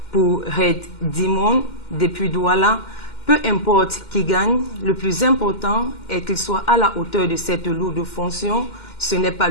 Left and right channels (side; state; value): right; late; 2.1 ms